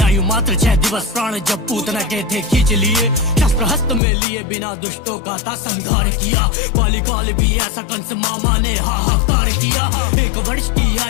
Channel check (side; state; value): right; drops out; at 4.0 s